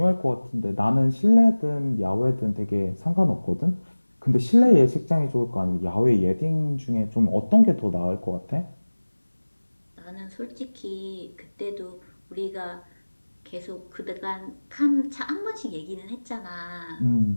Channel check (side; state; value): both; inverted; correlation -1.00